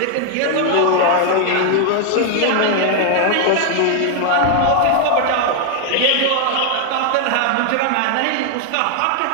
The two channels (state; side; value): different; both; correlation 0.00